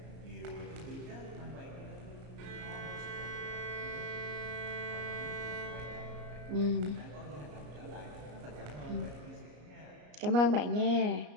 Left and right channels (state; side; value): late; left; 33 ms